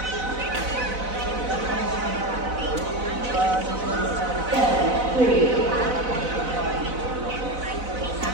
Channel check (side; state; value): left; late; 4.0 ms